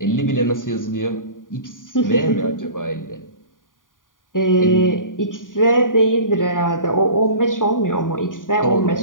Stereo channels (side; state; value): right; late; 0.89 ms